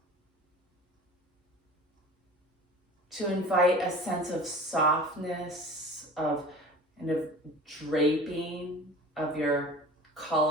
to invite a sense of softness, of kind of draping of your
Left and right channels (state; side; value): normal; both; correlation 0.39